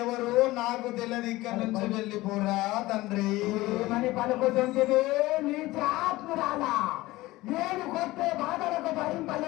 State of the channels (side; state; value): right; quieter; 18.8 dB